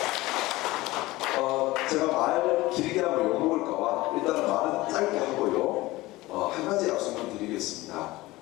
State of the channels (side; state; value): right; quieter; 19.3 dB